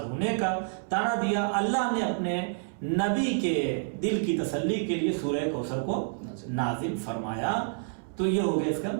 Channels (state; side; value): silent; left; 59 dB below the other